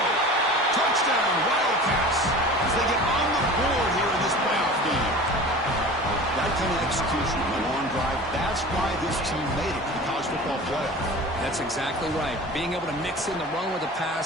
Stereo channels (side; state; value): both; normal; correlation 0.38